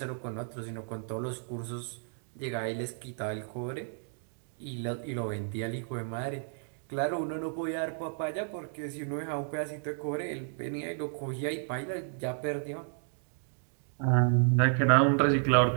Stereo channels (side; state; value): left; silent; 56 dB below the other